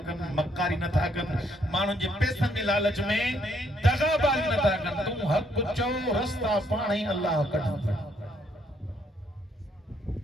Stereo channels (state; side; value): normal; both; correlation 0.70